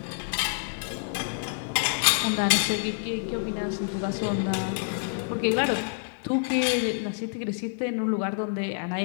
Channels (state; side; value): silent; right; digital silence